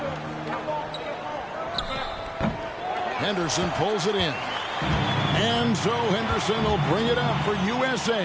Henderson pulls it in. And so Henderson will bring it up for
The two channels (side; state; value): both; identical; correlation 1.00